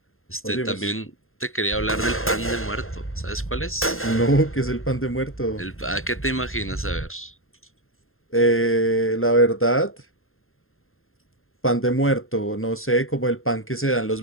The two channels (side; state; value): right; late; 0.61 ms